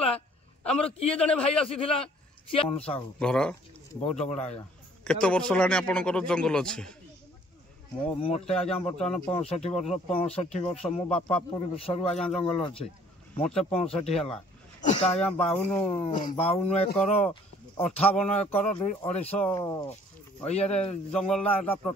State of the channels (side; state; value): both; normal; correlation 0.57